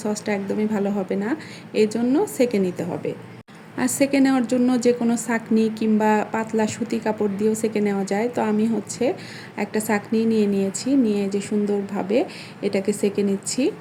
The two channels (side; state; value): both; identical; correlation 1.00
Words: সসটা একদমই ভালো হবে না। এই জন্য ছেঁকে নিতে হবে। আর ছেঁকে নেওয়ার জন্য যে কোনো ছাঁকনি কিংবা পাতলা সুতি কাপড় দিয়েও ছেঁকে নেওয়া যায়। তো আমি হচ্ছে একটা ছাঁকনি নিয়ে নিয়েছি, নিয়ে যে সুন্দরভাবে এটাকে ছেঁকে নিচ্ছি।